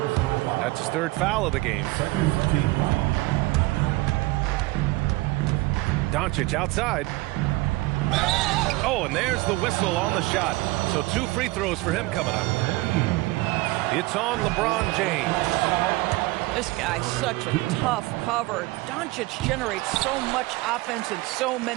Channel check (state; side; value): quieter; left; 21.1 dB